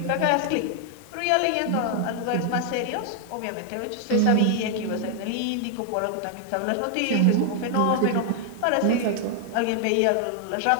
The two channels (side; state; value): both; different; correlation 0.00